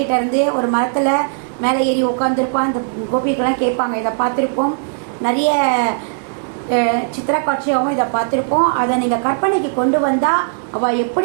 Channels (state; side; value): silent; left; digital silence